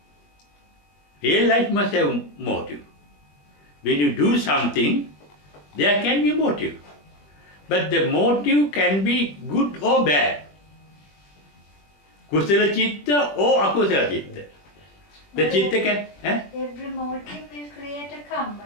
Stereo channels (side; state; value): right; late; 21 ms